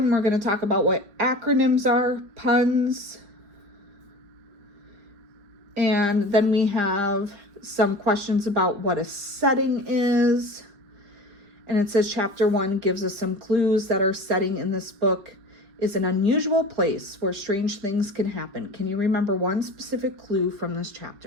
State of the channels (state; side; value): late; left; 5.1 ms